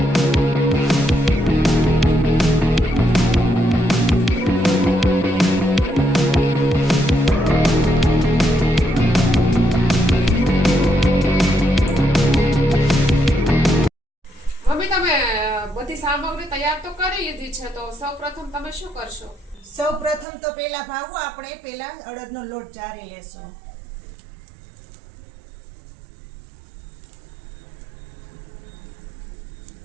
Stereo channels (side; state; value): left; drops out; at 20.2 s